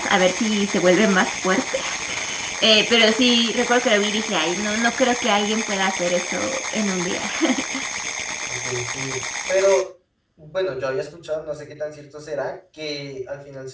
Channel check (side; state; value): both; identical; correlation 1.00